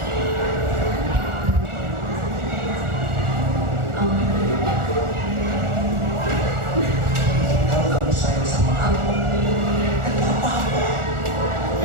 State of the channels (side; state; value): left; late; 1.4 ms